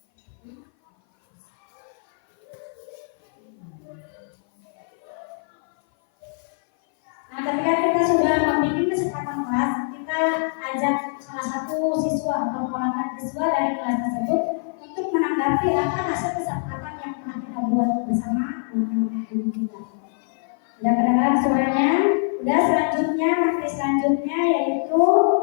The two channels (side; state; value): right; silent; 58 dB below the other